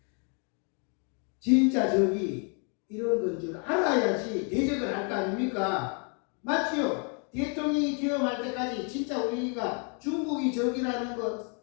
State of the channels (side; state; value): right; quieter; 38.6 dB